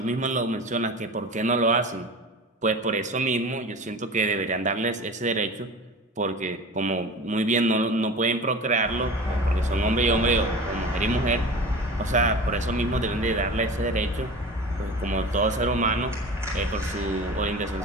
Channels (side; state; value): both; normal; correlation 0.35